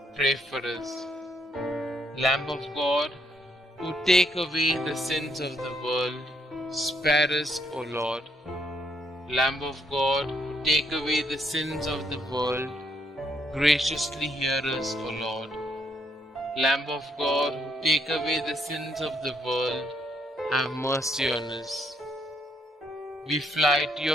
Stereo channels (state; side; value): normal; both; correlation 0.73